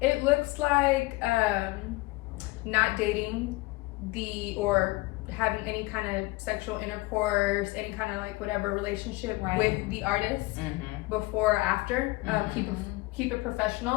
It looks like not dating or having any kind of sexual intercourse, any kind of like whatever relationship with the artist before or after. Keep it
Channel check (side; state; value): right; quieter; 21.9 dB